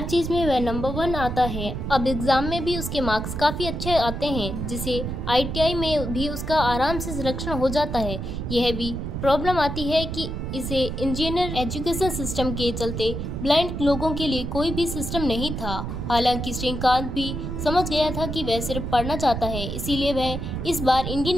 चीज में वह नंबर 1 आता है। अब एग्जाम में भी उसके मार्क्स काफी अच्छे आते हैं, जिसे ITI में भी उसका आराम से सिलेक्शन हो जाता है। यह भी प्रॉब्लम आती है कि इसे इंजीनियर एजुकेशन सिस्टम के चलते ब्लाइंड लोगों के लिए कोई भी सिस्टम नहीं था। हालांकि श्रीकांत भी समझ गया था कि वह सिर्फ पढ़ना चाहता है, इसीलिए वह इस बार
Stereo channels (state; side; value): noise; right; rumble, 4 dB below the sound